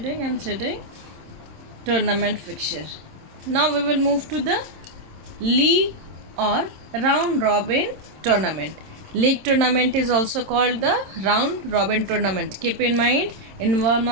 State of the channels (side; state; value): left; late; 27 ms